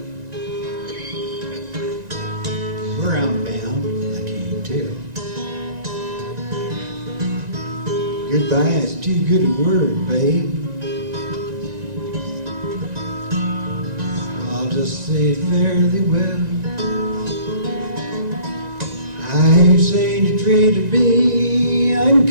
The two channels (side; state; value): left; late; 1.9 ms